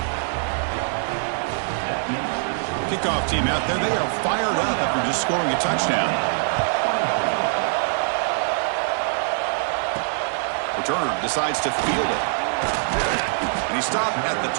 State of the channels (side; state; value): left; silent; 63 dB below the other